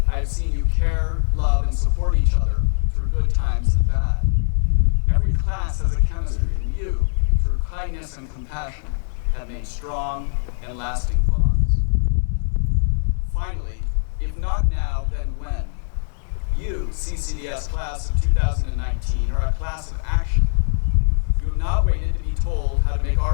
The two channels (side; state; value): right; silent; digital silence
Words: I have seen you care, love, and support each other through good times and bad. Every class has a chemistry, and you, through kindness and compassion, have made strong and lasting bonds. Finally, if not now, then when? You, CCDS class of 2019, are a class of action. You have not waited to be told how to make